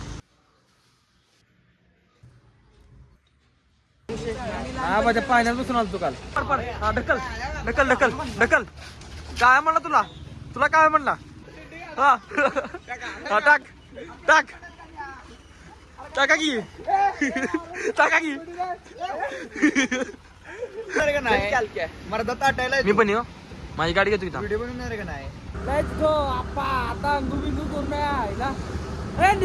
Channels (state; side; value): identical; both; correlation 1.00